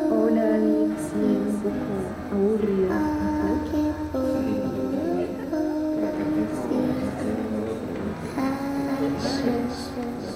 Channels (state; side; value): identical; both; correlation 1.00